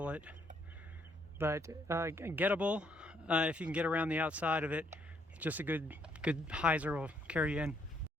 it. But gettable if you can get around the outside of it. Just a good hyzer will carry you in.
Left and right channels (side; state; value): both; normal; correlation 0.70